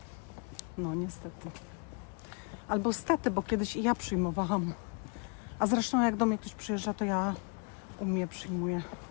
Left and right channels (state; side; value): quieter; right; 35.5 dB